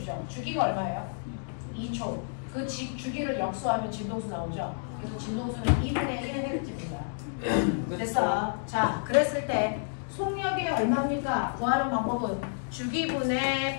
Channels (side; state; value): right; silent; digital silence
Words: 주기가 얼마예요? 2초. 그 주기를 역수하면 진동수 나오죠. 그래서 진동수는 2분의 1Hz입니다. 됐어. 자, 그랬을 때 속력이 얼마입니까? 구하는 방법은 주기분의